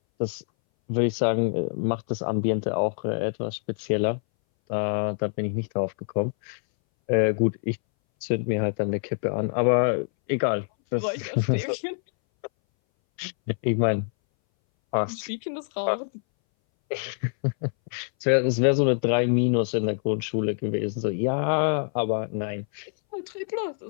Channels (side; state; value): right; silent; 60 dB below the other